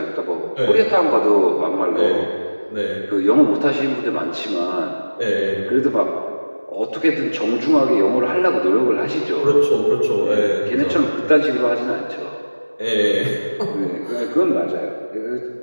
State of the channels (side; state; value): both; inverted; correlation -1.00